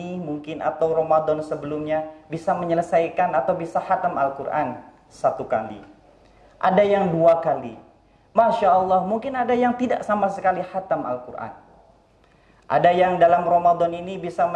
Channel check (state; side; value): identical; both; correlation 1.00